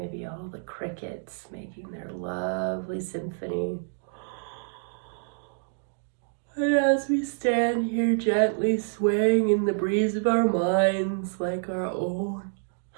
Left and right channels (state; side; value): silent; left; digital silence